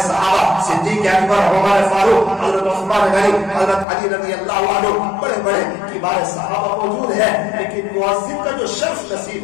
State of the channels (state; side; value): drops out; right; at 3.9 s